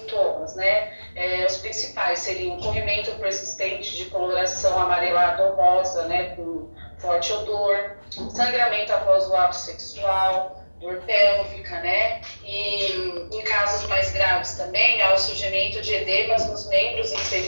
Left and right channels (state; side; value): inverted; both; correlation -1.00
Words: né? Os principais seriam corrimento persistente de coloração amarelada ou rosa, né, com forte odor, sangramento após o ato sexual, dor pélvica, né? E em casos mais graves também, há o surgimento de edemas nos membros